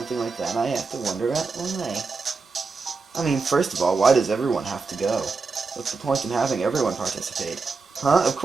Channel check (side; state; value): left; quieter; 4.4 dB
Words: like that, I have to wonder why. I mean, first of all, why does everyone have to go? What's the point in having everyone participate? Huh? Of